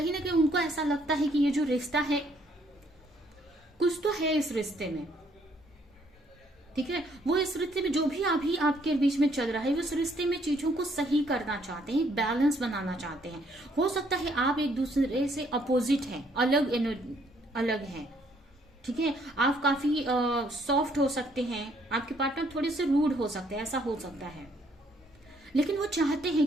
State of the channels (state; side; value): normal; both; correlation 0.67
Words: ना कहीं उनको ऐसा लगता है कि ये जो रिश्ता है, कुछ तो है इस रिश्ते में। ठीक है, वो इस रिश्ते में जो भी अभी आपके बीच में चल रहा है, वो इस रिश्ते में चीजों को सही करना चाहते हैं, बैलेंस बनाना चाहते हैं। हो सकता है आप एक दूसरे से अपोजिट हैं, अलग हैं। ठीक है, आप काफी सॉफ्ट हो सकते हैं, आपके पार्टनर थोड़े से रूड हो सकते हैं, ऐसा हो सकता है, लेकिन वो चाहते हैं